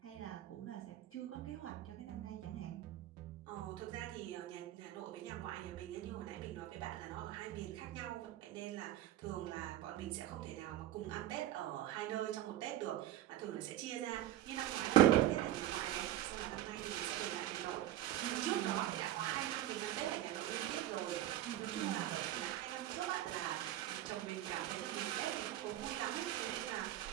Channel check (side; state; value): left; quieter; 13.3 dB